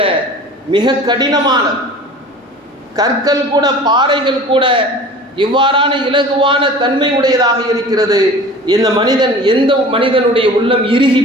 மிக கடினமானது. கற்கள் கூட, பாறைகள் கூட இவ்வாறான இலகுவான தன்மை உடையதாக இருக்கிறது. எந்த மனிதனுடைய உள்ளம் இறுகி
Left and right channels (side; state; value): both; normal; correlation 0.41